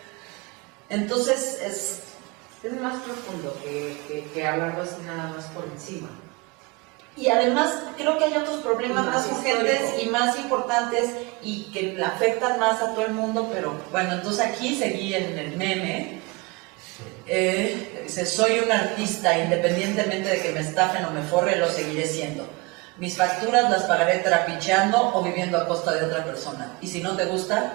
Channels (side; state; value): left; quieter; 26.4 dB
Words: Entonces Es más profundo que hablarlo así nada más por encima. y además creo que hay otros problemas Más más urgentes histórico. y más importantes y que le afectan más a todo el mundo, pero bueno, entonces aquí seguí en el meme. Dice, soy un artista, independientemente de que me estafen o me forre, lo seguiré siendo. Mis facturas las pagaré trapicheando o viviendo a costa de otra persona. Y si no te gusta,